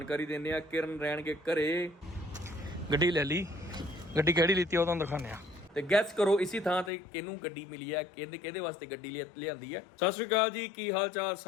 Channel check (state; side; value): drops out; right; at 6.9 s